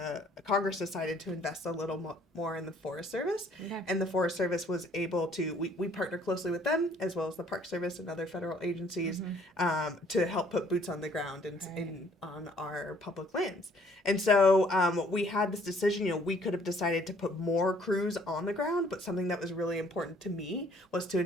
Congress decided to invest a little more in the Forest Service. And the Forest Service was able to, we partner closely with them as well as the Park Service and other federal agencies to help put boots on the ground on our public lands. And so we had this decision, we could have decided to put more crews on the ground, but something that was really important to me was to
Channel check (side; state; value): both; normal; correlation 0.61